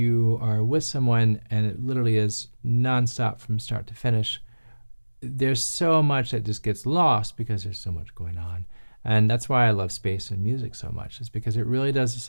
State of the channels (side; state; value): both; inverted; correlation -1.00